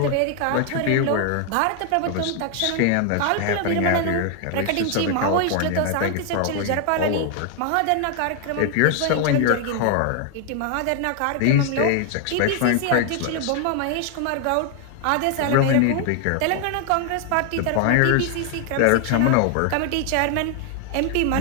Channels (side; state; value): both; different; correlation 0.00